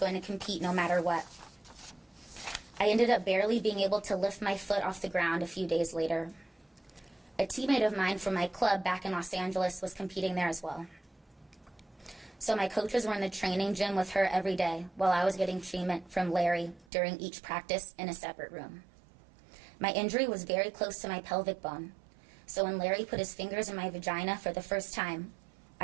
to compete no matter what. I ended up barely being able to lift my foot off the ground a few days later. A teammate of mine from my club back in Los Angeles was competing there as well. So my coaches were in the training gym with her every day while I was getting treatment from Larry during each practice in a separate room. My injury was very close to my pelvic bone, so when Larry put his fingers in my vagina for the first time,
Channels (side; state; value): left; drops out; at 16.9 s